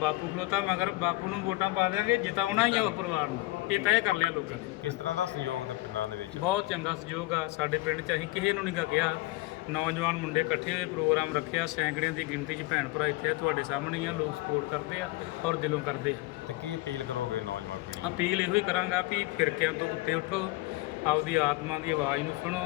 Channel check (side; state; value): right; quieter; 19.8 dB